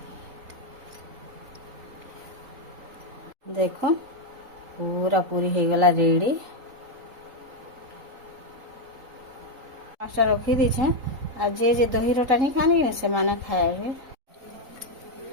देखो पूरा पूरी हो गला रेडी पाँचटा रखी दीछे आ जे दही रोटा नहीं खाने कि से माने खाए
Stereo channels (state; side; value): late; left; 3.9 ms